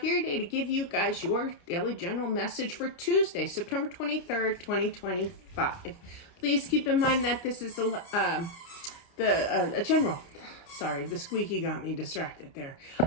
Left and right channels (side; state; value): right; late; 29 ms